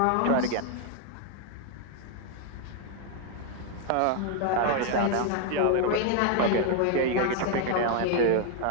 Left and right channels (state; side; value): different; both; correlation 0.00